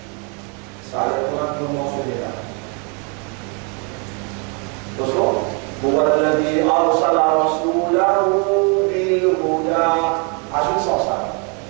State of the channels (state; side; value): quieter; left; 35.0 dB